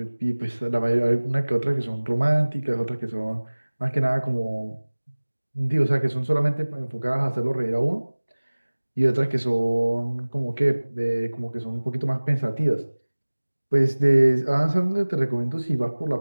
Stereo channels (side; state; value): both; inverted; correlation -1.00